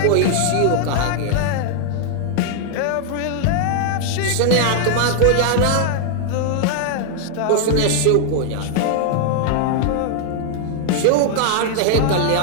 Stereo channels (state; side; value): different; both; correlation 0.00